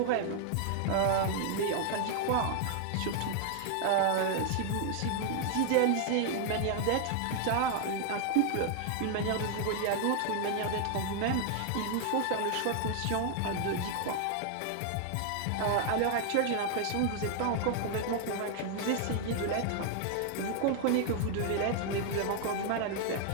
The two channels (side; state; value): both; different; correlation 0.00